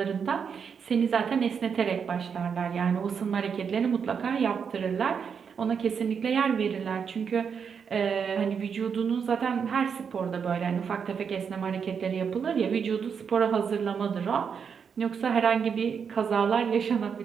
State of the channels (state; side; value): quieter; left; 6.7 dB